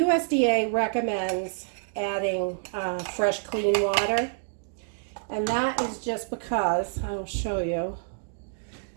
recommends adding fresh, clean water. And that is just because, I'll show you,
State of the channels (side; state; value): left; silent; 59 dB below the other